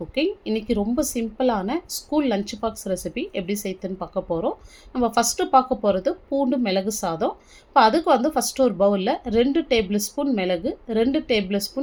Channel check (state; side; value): identical; both; correlation 1.00